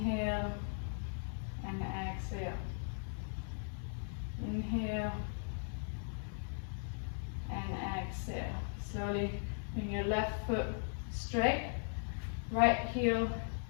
and exhale. Inhale and exhale. Slowly bring your left foot straight. Right heel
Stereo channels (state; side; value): silent; right; digital silence